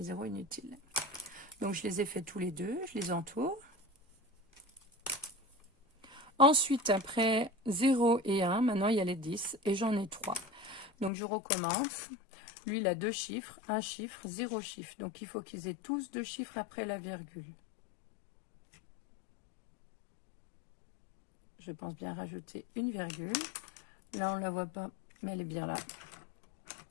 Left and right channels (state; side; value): drops out; right; at 11.1 s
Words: zéros inutiles. Donc, je les ai fait tous les deux. Je les entoure. Ensuite, après 0 et 1, maintenant il y a les 10 et j'en ai 3. Donc je recommence. Lui, il a 2 chiffres, 1 chiffre, 0 chiffre. Donc il faut qu'ils aient tous 2 chiffres après la virgule. Je pense bien rajouter une virgule. Là, on ne la voit pas, mais elle est bien là.